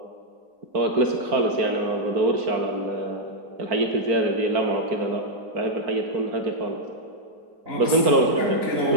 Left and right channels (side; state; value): left; late; 4.5 ms